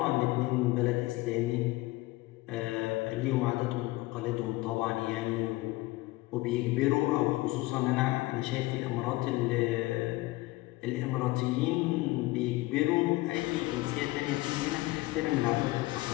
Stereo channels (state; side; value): quieter; right; 20.0 dB